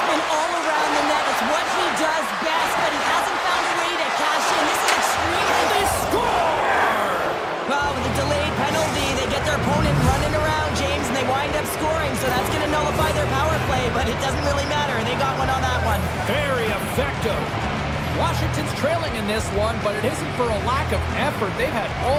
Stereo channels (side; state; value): both; identical; correlation 1.00